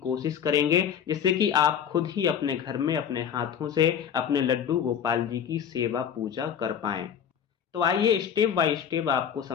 करेंगे, जिससे कि आप खुद ही अपने घर में अपने हाथों से अपने लड्डू गोपाल जी की सेवा पूजा कर पाएं। तो आइए स्टेप बाय स्टेप आपको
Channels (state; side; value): quieter; right; 8.3 dB